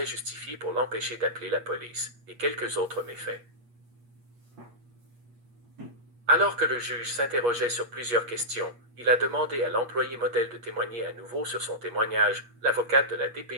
pour l'empêcher d'appeler la police, et quelques autres méfaits. Alors que le juge s'interrogeait sur plusieurs questions, il a demandé à l'employé modèle de témoigner à nouveau sur son témoignage. L'avocate de la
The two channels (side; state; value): left; late; 8.4 ms